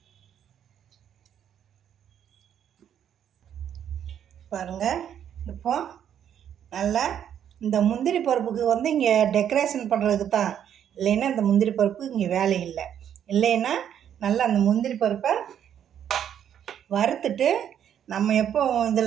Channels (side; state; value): left; quieter; 9.5 dB